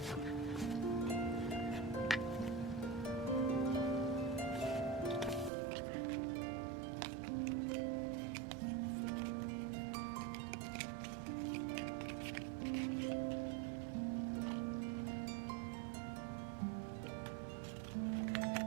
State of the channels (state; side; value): drops out; left; at 5.5 s